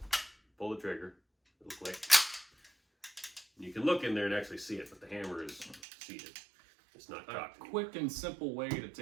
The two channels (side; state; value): left; drops out; at 5.8 s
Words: pull the trigger, it'll click. You can look in there and actually see it, but the hammer is seated. It's not cocked. A quick and simple way to